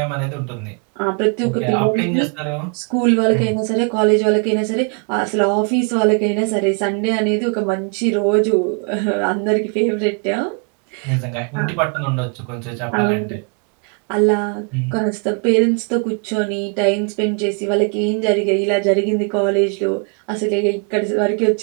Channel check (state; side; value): quieter; left; 37.7 dB